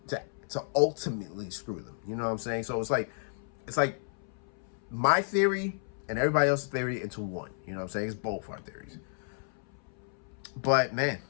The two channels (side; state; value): right; silent; 56 dB below the other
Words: ultimately screw them. You know what I'm saying? So it's like my theory and everybody else's theory into one. You know what I'm saying? It's both our theories. But man,